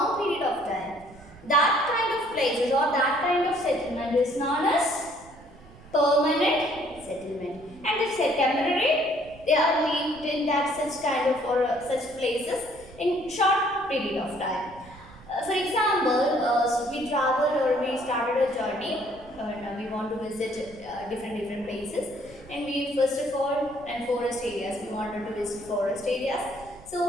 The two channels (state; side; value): noise; right; rumble, 22 dB below the sound